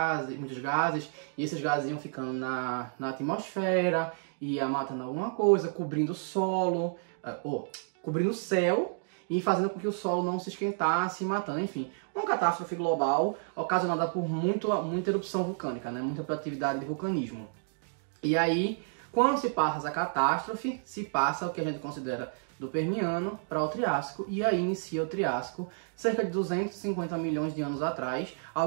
e esses gases iam ficando na atmosfera, ia matando alguma coisa, cobrindo o solo, cobrindo o céu, e fazendo com que o solo não se esquentasse e matando, enfim, uma catástrofe global ocasionada por muita erupção vulcânica, né? Muita atividade de vulcanismo. E aí, quando se passa essa catástrofe, se passa o que a gente considera do Permiano para o Triássico, e aí inicia o Triássico, cerca de 250 milhões de anos atrás.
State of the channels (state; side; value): silent; left; digital silence